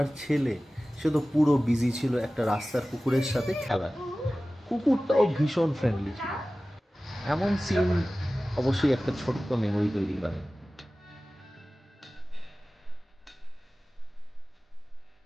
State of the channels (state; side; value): normal; both; correlation 0.97